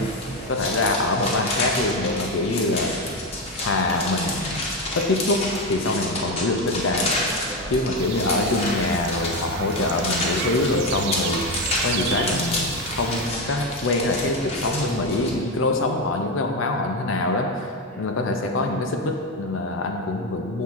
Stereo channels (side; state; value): both; normal; correlation 0.12